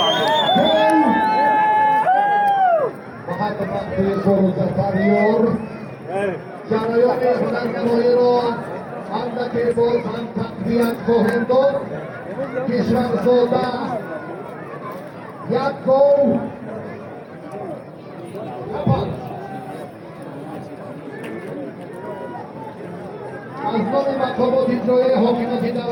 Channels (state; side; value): identical; both; correlation 1.00